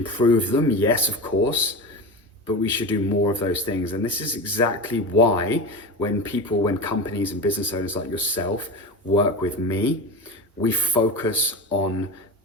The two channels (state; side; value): normal; both; correlation 0.26